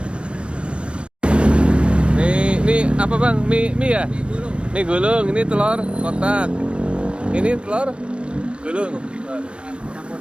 Nih apa bang? Mie ya? Mie gulung. Ini telur kotak. Ini telur gulung. Campur.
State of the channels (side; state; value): left; late; 0.058 ms